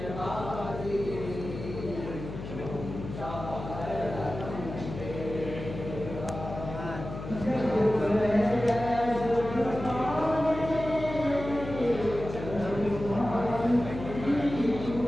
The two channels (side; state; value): left; noise; hum, 9 dB below the sound